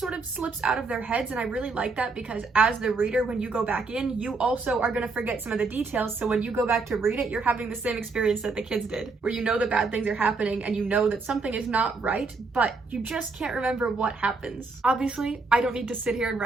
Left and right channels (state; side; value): quieter; left; 4.0 dB